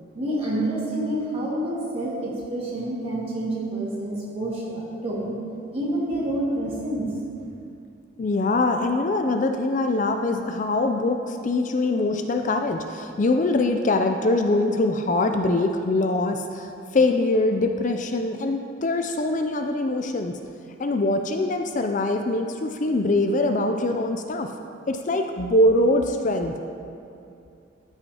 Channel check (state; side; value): normal; both; correlation 0.36